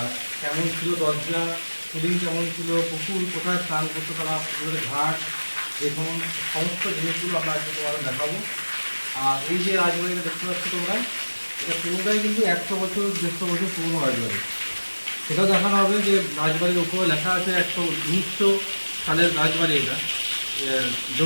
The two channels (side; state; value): both; inverted; correlation -1.00